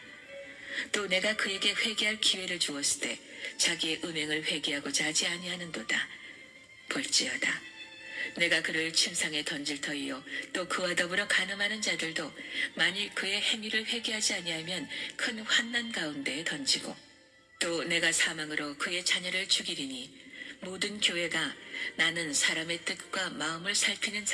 또 내가 그에게 회개할 기회를 주었을 때 자기의 음행을 회개하고자 하지 아니하는도다. 볼지어다. 내가 그를 침상에 던질 터이요 또 그와 더불어 간음하는 자들도 만일 그의 행위를 회개하지 아니하면 큰 환난 가운데에 던지고 또 내가 사망으로 그의 자녀를 죽이리니 모든 교회가 나는 사람의 뜻과 마음을 살피는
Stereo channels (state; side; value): identical; both; correlation 1.00